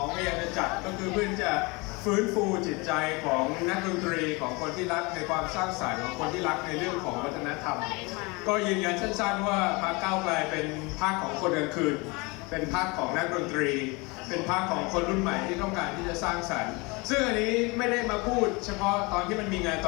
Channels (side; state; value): right; quieter; 26.9 dB